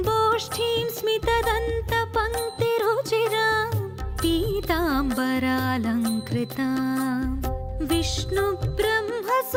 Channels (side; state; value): both; identical; correlation 1.00